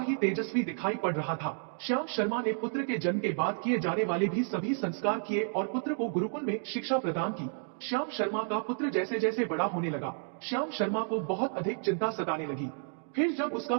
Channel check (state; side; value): silent; left; 57 dB below the other